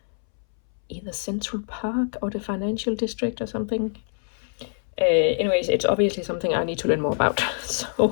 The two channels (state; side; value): silent; right; 62 dB below the other